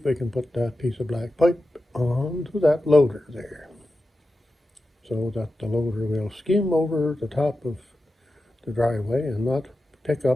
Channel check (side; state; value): both; normal; correlation 0.92